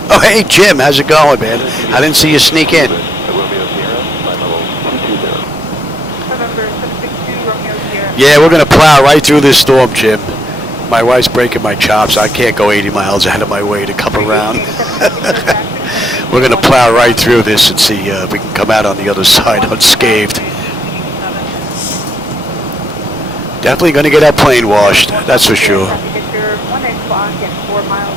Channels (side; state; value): both; normal; correlation 0.75